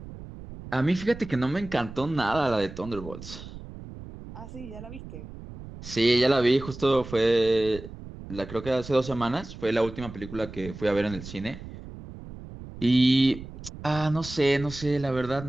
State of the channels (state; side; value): noise; right; rumble, 13 dB below the sound